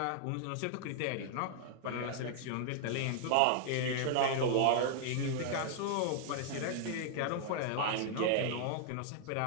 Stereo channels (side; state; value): both; different; correlation 0.00